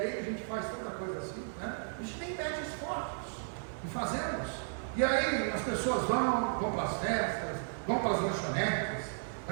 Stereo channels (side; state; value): left; silent; digital silence